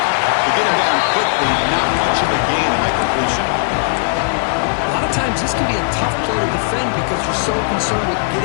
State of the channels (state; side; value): silent; right; 65 dB below the other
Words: They get him down quickly, not much of a gain on that completion. A lot of times this can be a tough play to defend because you're so concerned with